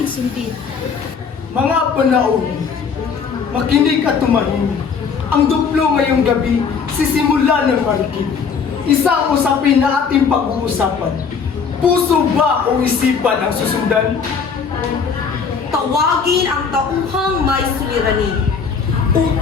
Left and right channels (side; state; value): right; quieter; 5.9 dB